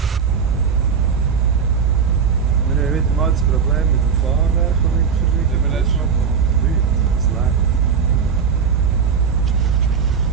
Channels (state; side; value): quieter; left; 6.5 dB